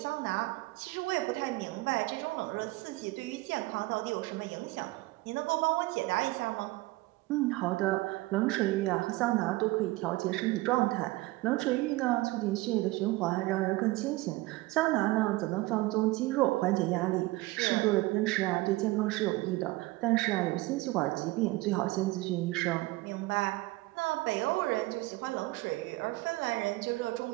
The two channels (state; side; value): quieter; left; 20.4 dB